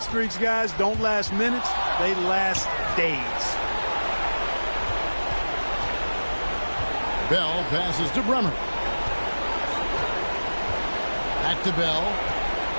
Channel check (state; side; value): inverted; both; correlation -1.00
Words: streaks, guys, don't last minutes. They last days. Bell passes to Bremer. Back to Bell.